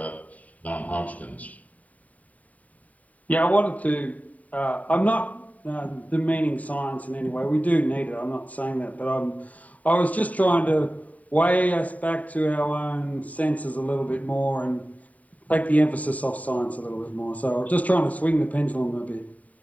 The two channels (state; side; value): late; right; 0.071 ms